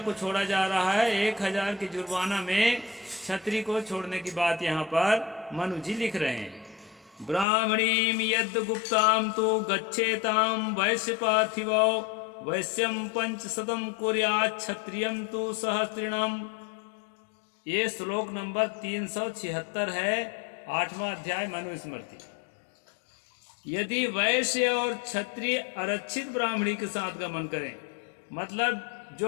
को छोड़ा जा रहा है। 1000 के जुर्माना में क्षत्रिय को छोड़ने की बात यहाँ पर मनु जी लिख रहे हैं। ब्राह्मणीम यद गुप्ताम तो गच्छेताम वैश्य पार्थिवो वैश्यम 500 कुर्यात् क्षत्रियम तो सहस्त्रिणम। ये श्लोक नंबर 376 है, 8वां अध्याय मनुस्मृति। यदि वैश्य और क्षत्रिय आरक्षित ब्राह्मणी के साथ गमन करें, मतलब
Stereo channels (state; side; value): drops out; right; at 7.5 s